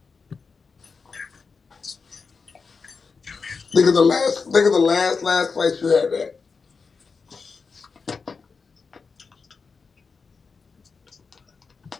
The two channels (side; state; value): right; quieter; 4.9 dB